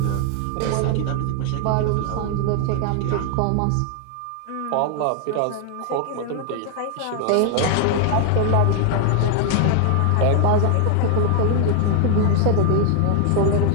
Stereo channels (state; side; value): different; both; correlation 0.00